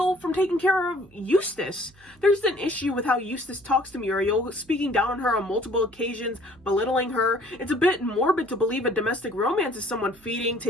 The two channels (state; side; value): noise; right; hum, 28 dB below the sound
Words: from taking care of Eustace. There's an issue with how Eustace talks to Muriel, speaking down on her on multiple occasions, belittling her. It's a bit morbid to believe a domestic romance is someone feeding,